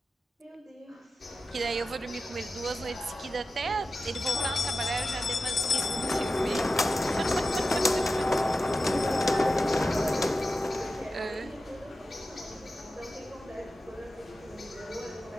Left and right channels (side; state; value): both; normal; correlation 0.92